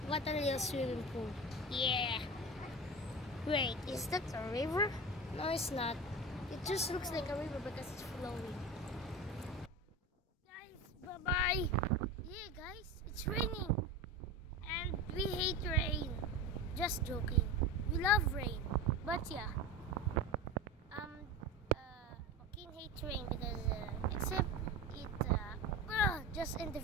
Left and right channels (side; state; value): both; normal; correlation 0.27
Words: What a real swimming pool. Yeah. Wait, is that a river? No, it's not. It just looks like a river because it's flowing. Guys, bye-bye. Yeah, guys, it's raining. And we hate rain. Just joking. We love rain. But yeah. Joaquin hates rain because, except it, just end the